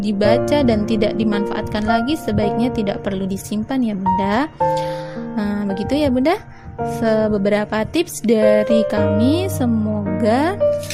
dan tidak dimanfaatkan lagi, sebaiknya tidak perlu disimpan ya Bunda. Begitu ya Bunda, beberapa tips dari kami. Semoga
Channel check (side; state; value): both; identical; correlation 1.00